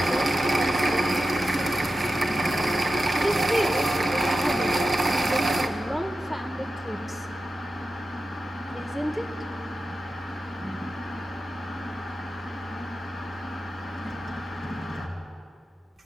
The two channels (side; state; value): both; normal; correlation 0.92